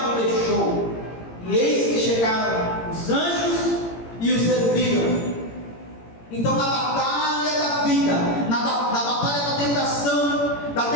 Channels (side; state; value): right; late; 18 ms